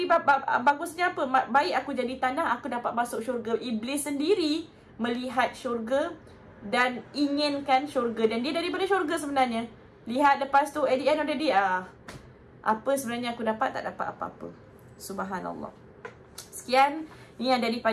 bagusnya apa? Baik aku jadi tanah, aku dapat masuk syurga. Iblis sendiri melihat syurga dan inginkan syurga, dan dia daripada syurga sebenarnya. Lihat lepas tu at the end of the day, apa sebenarnya aku dapat? Tak dapat apa-apa. Subhanallah. Sekian, ini yang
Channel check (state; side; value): identical; both; correlation 1.00